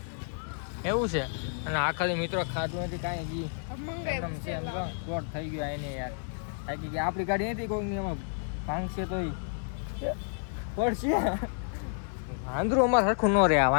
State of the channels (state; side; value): silent; right; 57 dB below the other